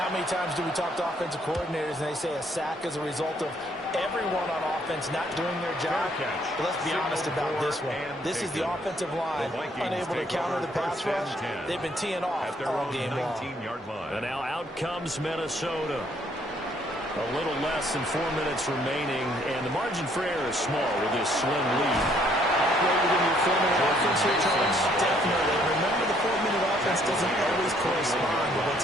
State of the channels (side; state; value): both; normal; correlation 0.66